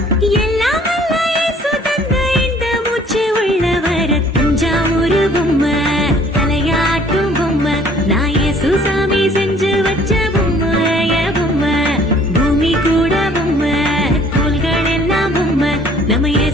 எல்லாம் வல்ல இயேசு தந்த இந்த மூச்சு உள்ளவர. தஞ்சாவூரு பொம்மை, தலையாட்டும் பொம்மை, நான் சுசாமி செஞ்சு வச்ச பொம்மை, பொம்மை, பூமி கூட பொம்மை, தோள்கள் எல்லாம் பொம்மை, நம்ம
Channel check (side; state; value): both; normal; correlation 0.56